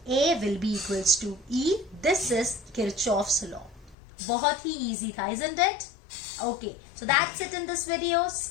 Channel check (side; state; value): right; drops out; at 4.0 s